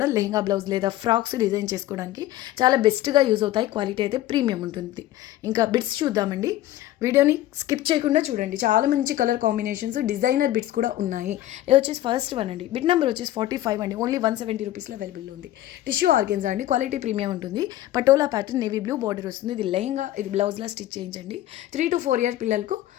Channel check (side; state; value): right; quieter; 14.3 dB